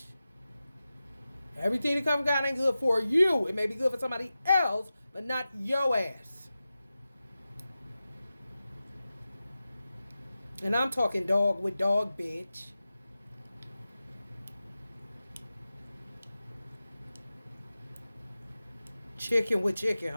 Everything that comes from God ain't good for you. It may be good for somebody else, but not your ass. And I'm talking dog with dog, bitch. Chicken with chicken,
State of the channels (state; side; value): inverted; both; correlation -0.94